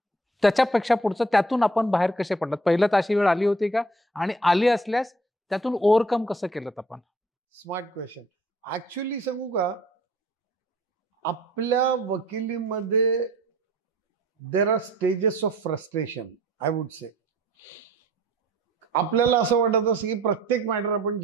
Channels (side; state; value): both; normal; correlation 0.54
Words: त्याच्यापेक्षा पुढचं त्यातून आपण बाहेर कसे पडलात? पहिलं तर अशी वेळ आली होती का, आणि आली असल्यास त्यातून ओव्हरकम कसं केलं आपण? Smart question. ऍक्च्युली सांगू का, आपल्या वकिलीमध्ये there are stages of frustration, I would say. आपल्याला असं वाटत असं की प्रत्येक मॅटर आपण